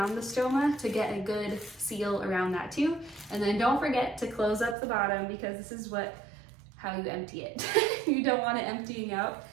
the stoma to get a good seal around that too. And then don't forget to close up the bottom because this is how you empty it. You don't want it emptying out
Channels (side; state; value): left; drops out; at 4.8 s